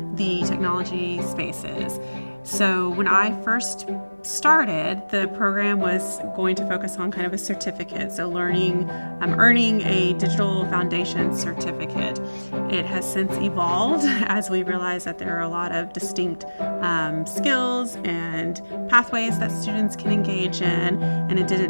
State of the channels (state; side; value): inverted; both; correlation -1.00